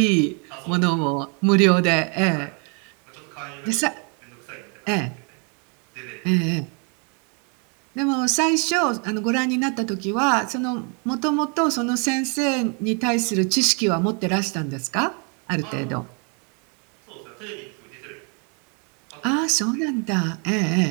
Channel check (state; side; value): quieter; left; 36.3 dB